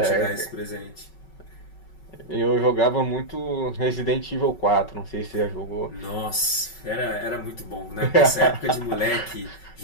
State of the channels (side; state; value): right; late; 5.3 ms